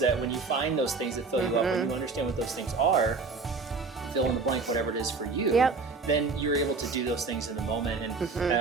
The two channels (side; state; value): left; quieter; 4.2 dB